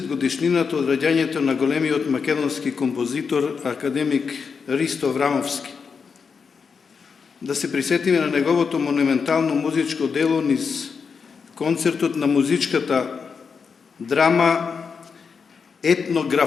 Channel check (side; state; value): right; quieter; 5.7 dB